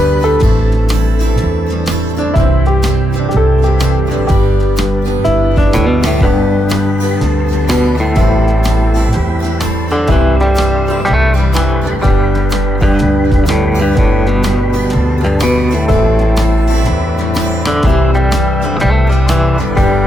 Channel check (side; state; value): both; normal; correlation 0.84